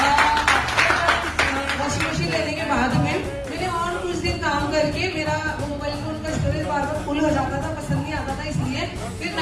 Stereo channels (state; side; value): identical; both; correlation 1.00